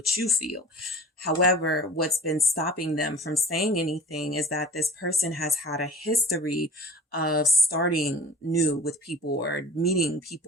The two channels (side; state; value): both; normal; correlation 0.41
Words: you feel. However, what's been stopping them from saying anything is that this person has had a history of starting new with people or meeting